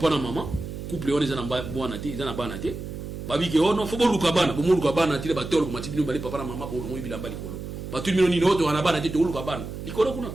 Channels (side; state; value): right; noise; hum, 8 dB below the sound